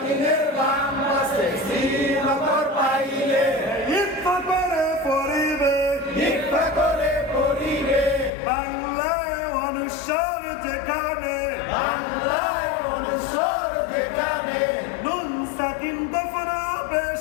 বাম পাশে সিন অক্ষর পাইলে ইকফা করে পড়িবে ইকফা করে পড়িবে বাংলায় অনুসার যেখানে বাংলায় অনুসর যেখানে নুন সাকিন দফন হবে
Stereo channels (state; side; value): drops out; right; at 8.3 s